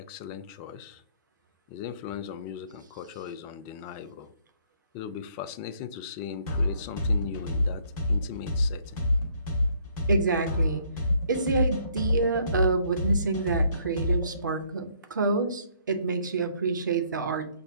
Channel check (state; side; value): inverted; both; correlation -0.64